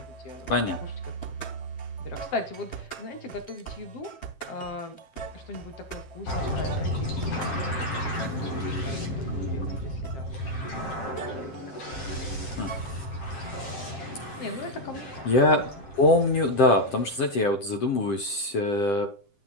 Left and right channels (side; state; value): right; late; 7.6 ms